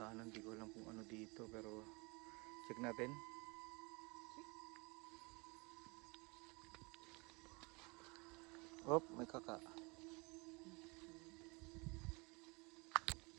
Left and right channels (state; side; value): quieter; left; 28.4 dB